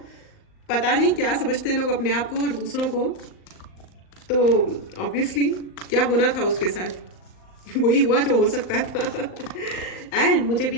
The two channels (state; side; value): late; right; 38 ms